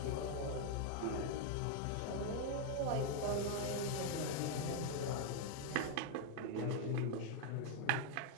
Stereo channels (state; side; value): different; both; correlation 0.00